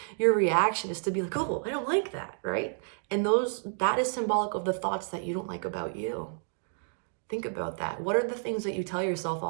your reaction is to be like, oh, I don't like that, right? And that is symbolic of the thoughts that you don't like about you. Think about that. What are the things that you tell yourself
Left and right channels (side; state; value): left; silent; 58 dB below the other